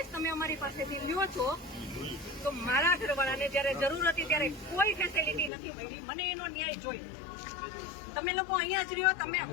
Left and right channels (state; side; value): drops out; right; at 5.5 s